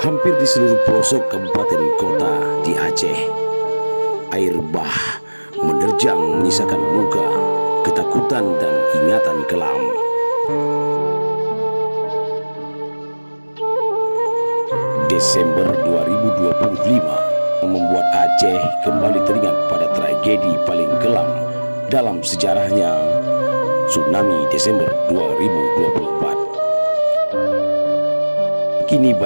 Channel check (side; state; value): both; inverted; correlation -1.00